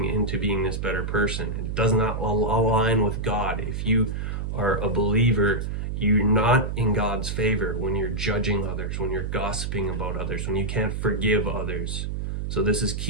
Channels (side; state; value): right; noise; hum, 3 dB below the sound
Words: into being this better person. It does not align with God. If you are a believer, you're not in God's favor when you're judging others, when you're gossiping about others, when you can't forgive others. So this is